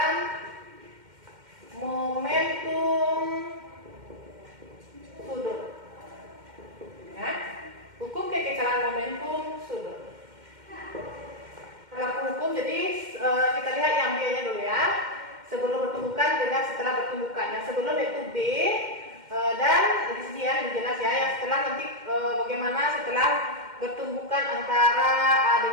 momentum sudut, ya, hukum kekekalan momentum sudut. Berlaku hukum, jadi kita lihat yang B-nya dulu, ya, sebelum bertumbukan dengan setelah bertumbukan. Yang sebelum yaitu B, dan di sini ya lebih jelas, ya, yang setelah nanti bagaimana setelah bertumbukan antara A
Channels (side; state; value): left; late; 2.1 ms